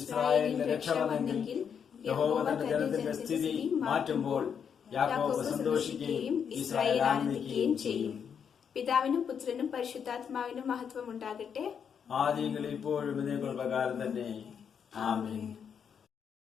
ഇസ്രായേലിന്റെ രക്ഷ വന്നെങ്കിൽ യഹോവ തന്റെ ജനത്തിന്റെ സ്ഥിതി മാറ്റുമ്പോൾ യാക്കോബ് സന്തോഷിക്കുകയും ഇസ്രായേൽ ആനന്ദിക്കുകയും ചെയ്യും. പിതാവിനും പുത്രനും പരിശുദ്ധാത്മാവിനും മഹത്വം ഉണ്ടാകട്ടെ. ആദിയിൽ ഇപ്പോഴും ഇതേക്കുള്ള പ്രകാരം തന്നെ. ആമേൻ.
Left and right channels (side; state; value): right; quieter; 7.4 dB